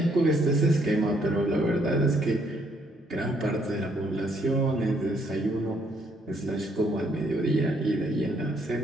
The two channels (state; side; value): normal; both; correlation 0.70